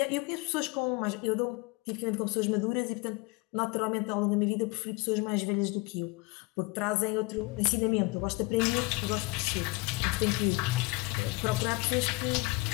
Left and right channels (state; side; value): quieter; right; 24.2 dB